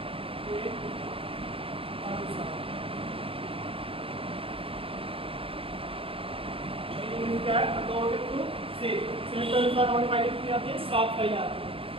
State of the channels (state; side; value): late; left; 0.27 ms